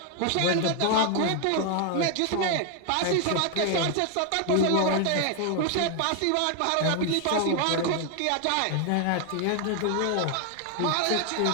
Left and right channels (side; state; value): both; different; correlation 0.00